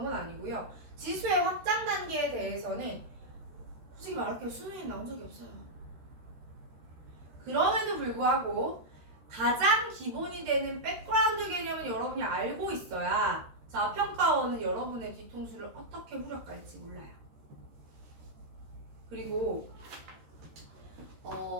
건 아니고요. 지수의 확장 단계에 대해서는 솔직히 말할게요. 수능에 나온 적이 없어요. 그럼에도 불구하고 가장 기본이 되는 백그라운드 개념은 여러분이 알고 있어야 자, 평가원은 여러분의 뒤통수를 어떻게 후려갈지 몰라요. 그리고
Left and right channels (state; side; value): late; left; 13 ms